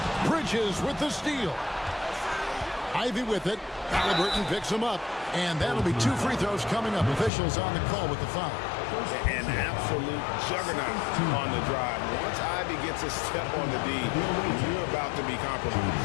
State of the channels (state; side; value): drops out; right; at 7.3 s